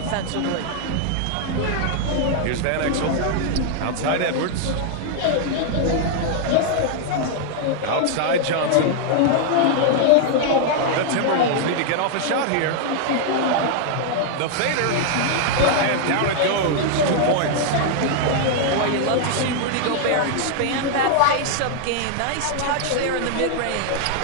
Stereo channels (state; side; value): different; both; correlation 0.00